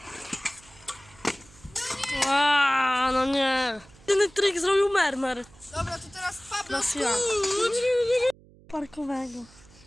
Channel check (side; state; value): right; noise; hum, 25 dB below the sound